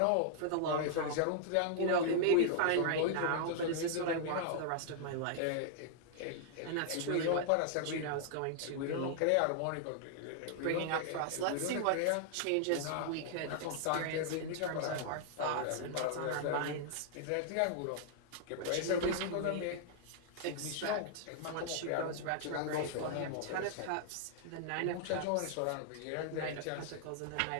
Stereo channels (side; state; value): both; different; correlation -0.01